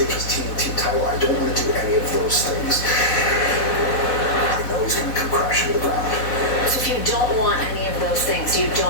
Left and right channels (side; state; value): right; late; 4.1 ms